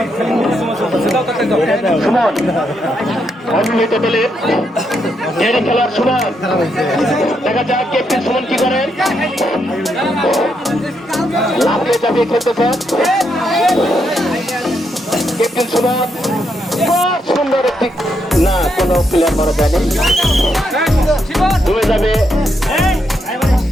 সুমন অবিবাহিত দলের খেলোয়াড় সুমন। দেখা যাক ক্যাপ্টেন সুমন কি করেন। লাফিয়ে চাপিয়ে খেলতেছেন ক্যাপ্টেন সুমন। সুন্দর একটি না, কোনো প্লেয়ার মারা যায়নি, ডুবে যাবে।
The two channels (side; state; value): both; normal; correlation 0.79